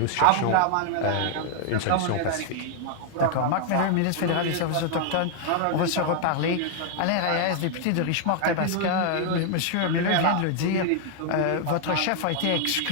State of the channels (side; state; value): both; different; correlation 0.00